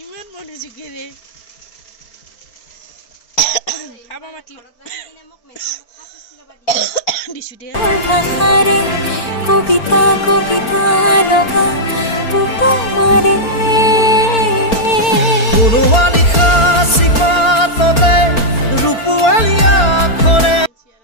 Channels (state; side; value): late; right; 4.4 ms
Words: ইমান মনোযোগেৰে খাব মাতিলে দিছোঁ দে ভাষাৰে কবিতা কবিতা লগা উপমাৰে কোনোৱা লিখা চিপাততে ৰূপৱালীয়া আখৰে